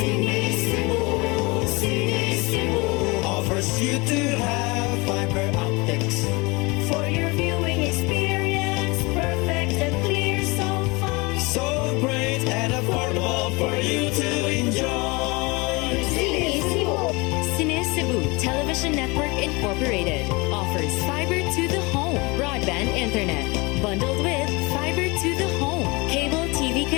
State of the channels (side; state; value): right; quieter; 25.9 dB